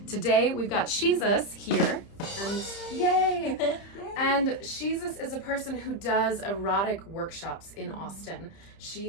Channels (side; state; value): right; late; 30 ms